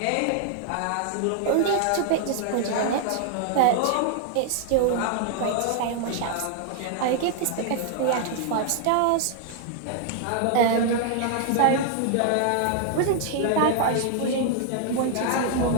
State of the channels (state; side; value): different; both; correlation 0.00